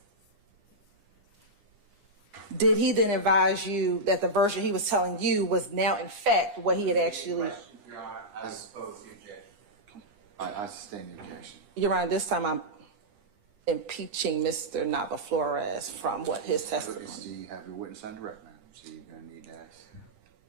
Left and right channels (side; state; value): left; late; 9.8 ms